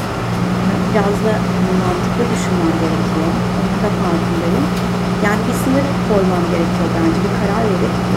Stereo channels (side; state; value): both; identical; correlation 1.00